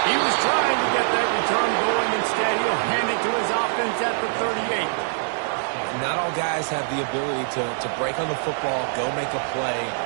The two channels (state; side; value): silent; left; digital silence